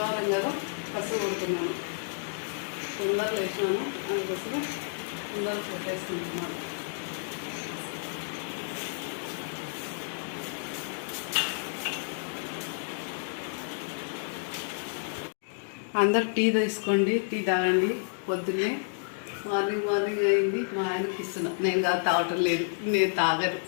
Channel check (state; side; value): silent; right; digital silence